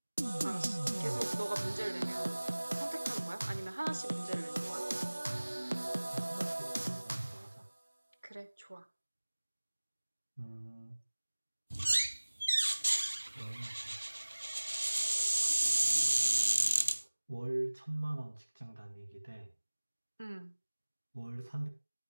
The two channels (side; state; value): both; inverted; correlation -1.00